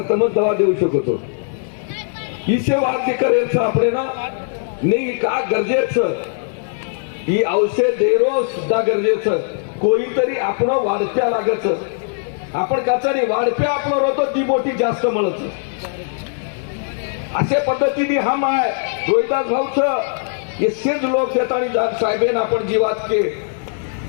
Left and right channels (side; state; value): right; silent; digital silence